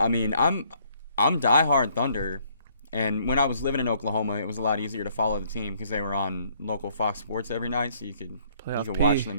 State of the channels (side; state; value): both; inverted; correlation -0.65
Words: mean, I'm diehard Thunder. And when I was living in Oklahoma, it was a lot easier to follow the team because they were on local Fox Sports every night, so you could watch